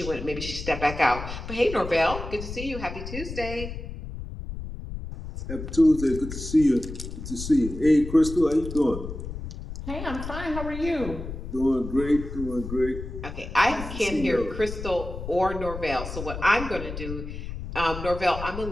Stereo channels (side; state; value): left; noise; rumble, 8 dB below the sound